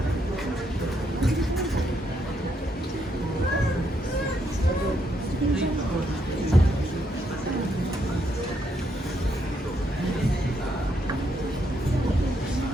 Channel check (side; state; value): both; normal; correlation 0.76